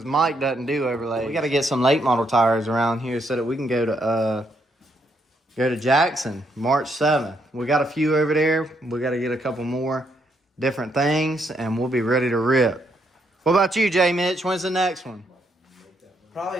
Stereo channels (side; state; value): both; normal; correlation 0.75